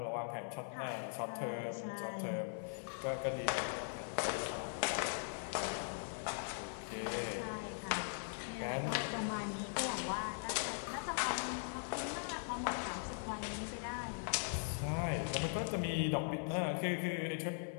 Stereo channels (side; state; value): right; silent; 51 dB below the other